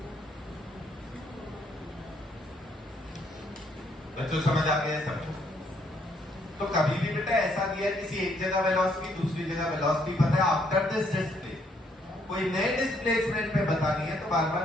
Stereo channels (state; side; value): normal; both; correlation 0.70